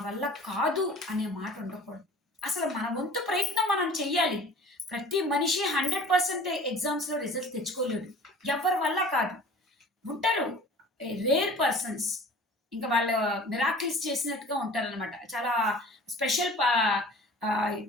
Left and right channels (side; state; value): both; normal; correlation 0.44